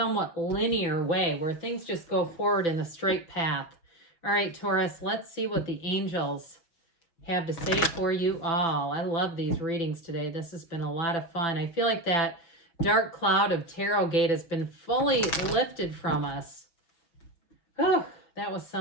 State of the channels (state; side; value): late; right; 6.2 ms